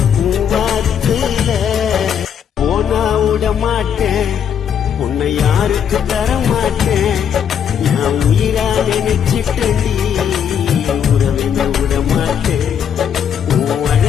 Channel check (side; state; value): right; quieter; 8.3 dB